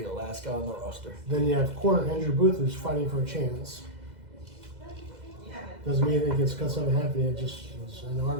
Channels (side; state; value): left; late; 2.0 ms